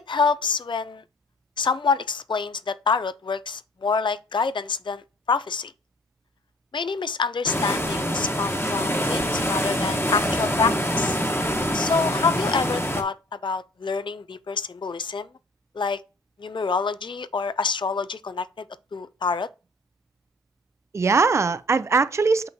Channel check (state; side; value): normal; both; correlation 0.52